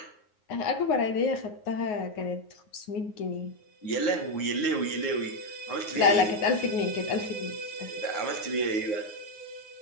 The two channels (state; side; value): late; right; 9.5 ms